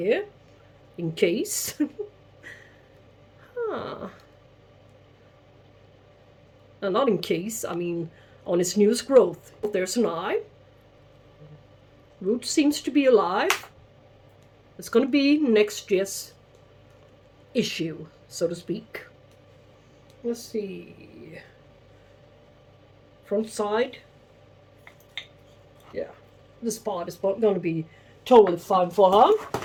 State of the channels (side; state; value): both; identical; correlation 1.00